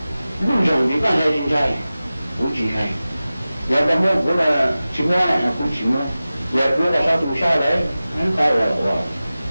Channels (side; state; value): both; inverted; correlation -0.96